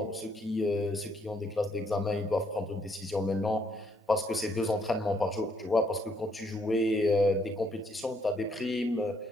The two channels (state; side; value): normal; both; correlation 0.71